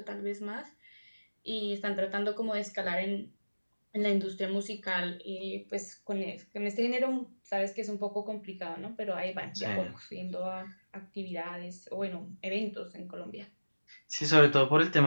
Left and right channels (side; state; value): both; inverted; correlation -1.00